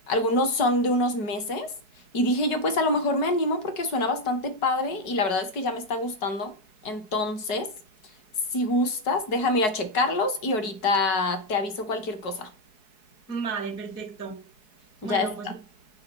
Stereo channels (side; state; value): right; late; 4.7 ms